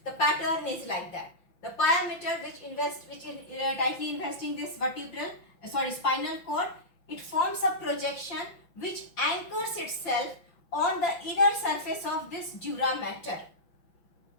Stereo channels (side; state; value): right; late; 5.9 ms